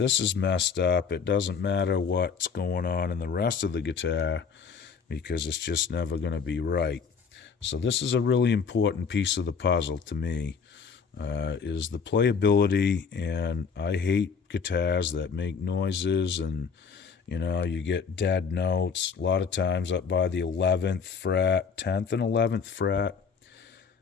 is messed up, it doesn't matter what's going on in the rest of the guitar, because it's just never going to be right. So this is a really important piece of the puzzle to me, is the playability. And I hate guitars that make noises and you get dead notes a lot of times up by the 11th fret, 10th and 11th fret.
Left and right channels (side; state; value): right; quieter; 5.9 dB